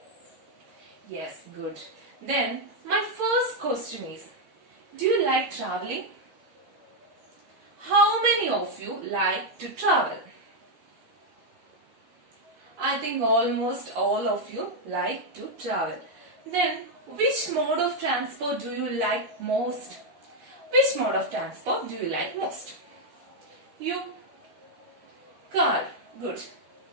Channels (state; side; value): late; left; 12 ms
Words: Yes, good. Then, my first question is, do you like traveling? How many of you like to travel? I think almost all of you like to travel. Then, which mode of transport do you like most? Which mode of transport do you like most? You? Car. Good.